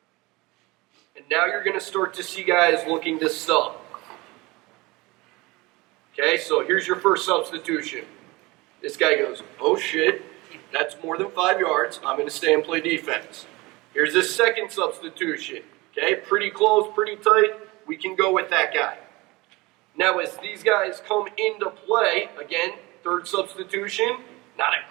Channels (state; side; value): quieter; left; 22.8 dB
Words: And now you're going to start to see guys looking to sub. Okay, so here's your first substitution. This guy goes, oh shit, that's more than 5 yards. I'm going to stay and play defense. Here's this second substitution. Okay, pretty close, pretty tight. We can go with that guy. Now as these guys come into play, again, third substitution, not